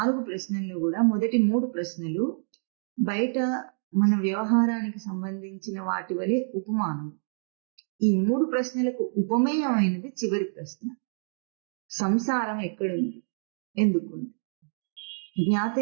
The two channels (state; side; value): silent; left; digital silence